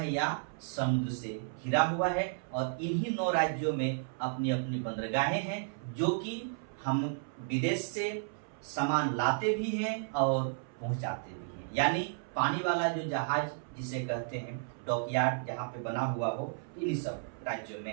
या समुद्र से घिरा हुआ है। और इन्हीं 9 राज्यों में अपनी अपनी बंदरगाहें हैं जो कि हम विदेश से सामान लाते भी हैं और पहुंचाते भी हैं। यानी पानी वाला जो जहाज जिसे कहते हैं डॉकयार्ड जहाँ पे बना हुआ हो, इन्हीं सब राज्यों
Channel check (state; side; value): silent; left; 56 dB below the other